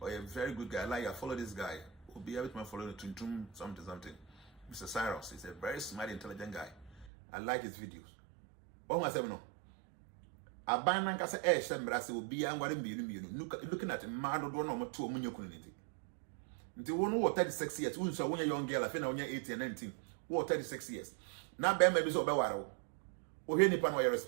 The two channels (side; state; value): left; drops out; at 7.1 s